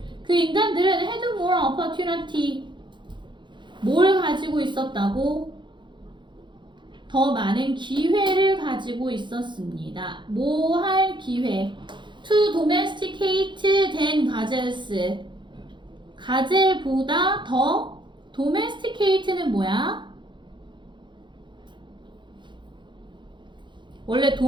그 인간들은 had more opportunity. 뭘 가지고 있었다고? 더 많은 기회를 가지고 있었습니다. 뭐 할 기회? To domesticate than gazelles. 가젤보다 더 domesticate는 뭐야? 원래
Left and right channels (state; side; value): late; left; 0.23 ms